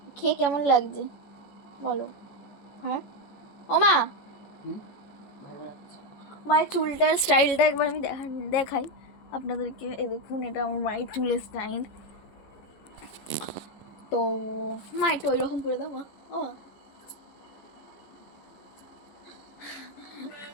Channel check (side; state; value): right; late; 14 ms